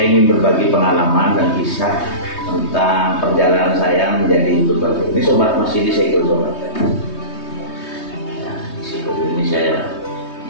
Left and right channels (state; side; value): late; right; 3.2 ms